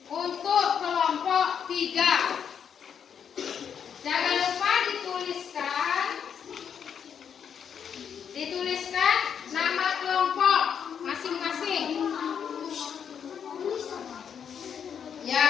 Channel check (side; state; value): right; quieter; 7.7 dB